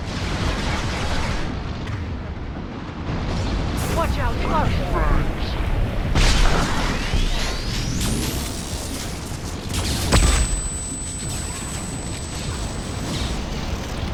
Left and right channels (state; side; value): identical; both; correlation 1.00